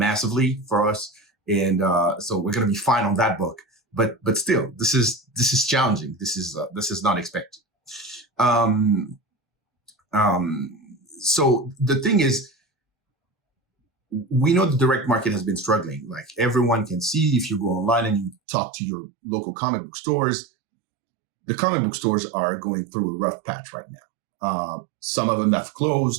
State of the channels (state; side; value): drops out; left; at 18.4 s